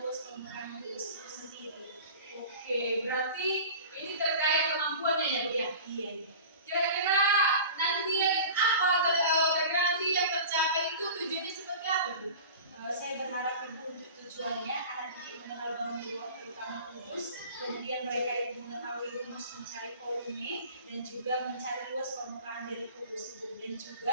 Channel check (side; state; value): both; inverted; correlation -0.38